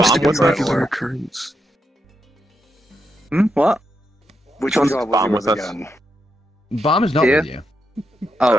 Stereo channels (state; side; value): normal; both; correlation 0.83